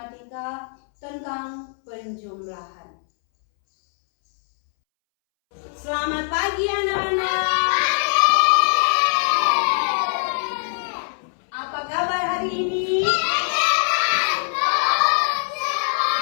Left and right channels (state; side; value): silent; right; 64 dB below the other